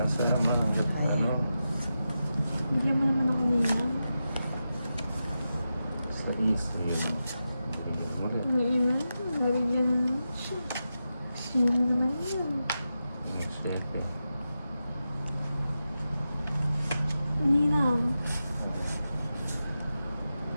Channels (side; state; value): both; inverted; correlation -0.90